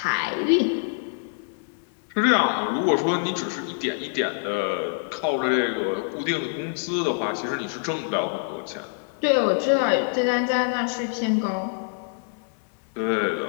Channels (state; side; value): silent; right; 61 dB below the other